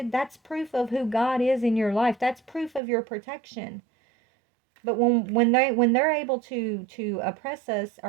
that's proof of who God is in your life. That's proof of your protection. But when they're able to oppress us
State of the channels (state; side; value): drops out; left; at 2.8 s